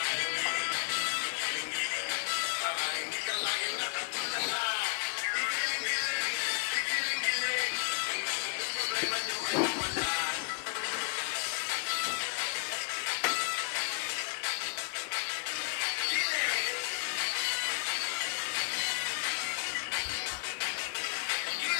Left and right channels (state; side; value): quieter; right; 39.9 dB